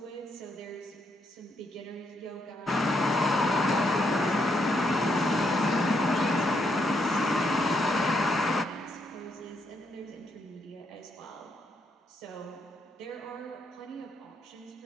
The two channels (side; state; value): both; normal; correlation 0.76